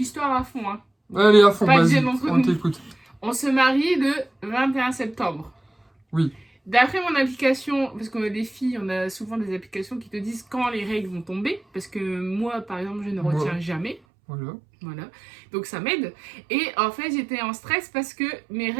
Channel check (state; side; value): drops out; left; at 14.0 s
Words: à fond, hein. Allez, à fond, Pas de vas-y, gêne entre on nous. t'écoute. On se marie le 21 septembre. Oui. D'après mon application, parce qu'on a des filles, on a souvent des applications qui te disent quand les règles vont tomber. Parce que moi, par exemple, je ne retiens jamais. Voilà. Donc ça m'aide. Et en fait, j'étais en stress parce que mes